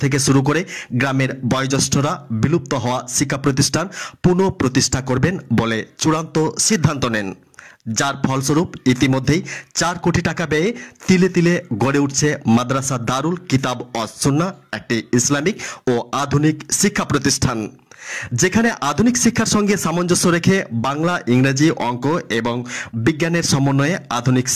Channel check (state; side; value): identical; both; correlation 1.00